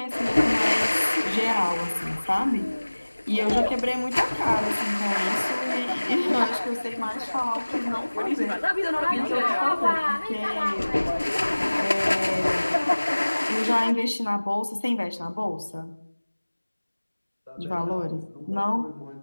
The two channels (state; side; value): inverted; both; correlation -1.00